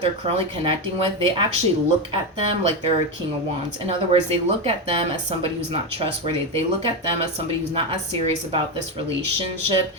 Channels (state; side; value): normal; both; correlation 0.12